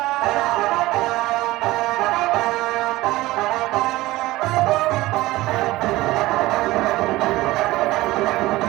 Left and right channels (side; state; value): left; quieter; 18.3 dB